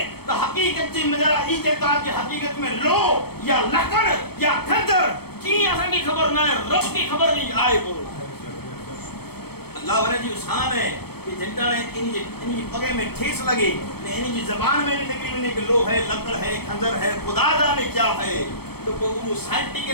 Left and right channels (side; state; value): right; late; 0.96 ms